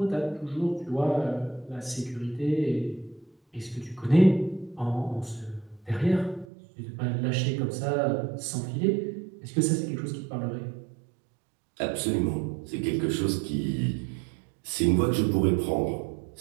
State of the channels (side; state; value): left; drops out; at 6.5 s